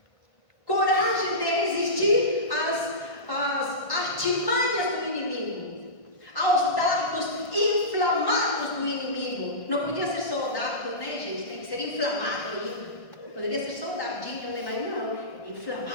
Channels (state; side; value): late; right; 1.5 ms